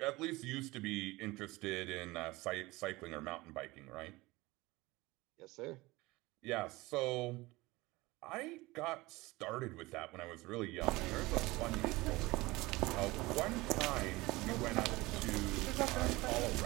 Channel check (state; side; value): quieter; left; 21.1 dB